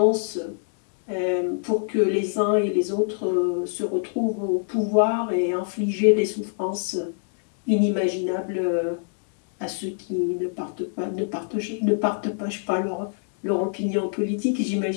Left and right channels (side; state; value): right; silent; 62 dB below the other